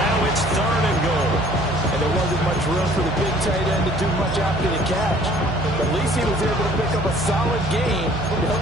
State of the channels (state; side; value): noise; right; hum, 7 dB below the sound